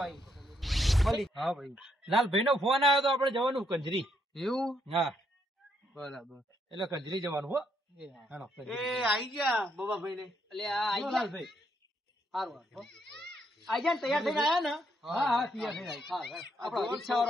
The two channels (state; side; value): normal; both; correlation 0.75